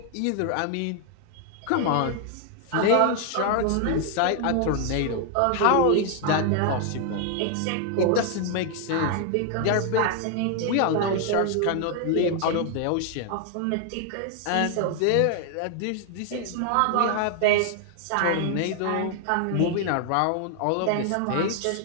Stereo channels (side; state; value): both; different; correlation 0.00